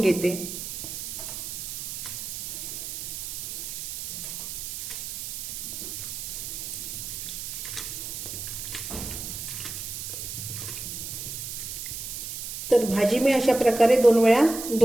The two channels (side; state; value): right; noise; hiss, 6 dB below the sound